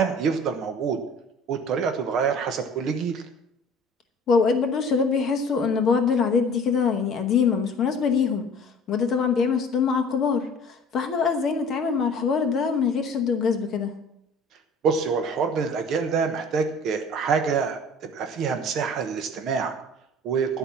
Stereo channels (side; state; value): both; normal; correlation 0.46